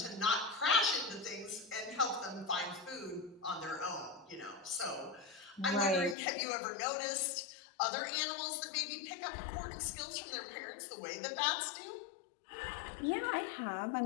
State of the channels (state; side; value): drops out; right; at 6.2 s